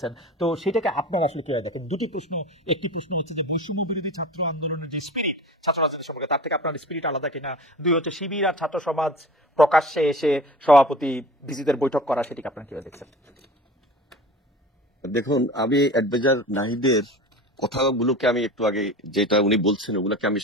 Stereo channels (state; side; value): normal; both; correlation 0.36